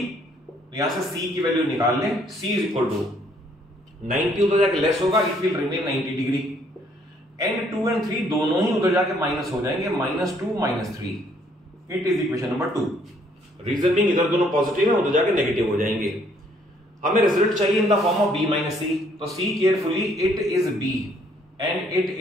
तो यहां से C की वैल्यू निकाल लें, C इज इक्वल टू 90 उधर जाके लेस होगा, it will remain 90 degree, and 2 and 3 दोनों ही उधर जाके माइनस हो जाएंगे, -2 -3। It is equation number 2। Reason being इधर दोनों पॉजिटिव है, उधर जाके नेगेटिव हो जाएंगे। हमें रिजल्ट चाहिए in the form of B minus C, तो C carefully, it is B and it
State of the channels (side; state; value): both; normal; correlation 0.65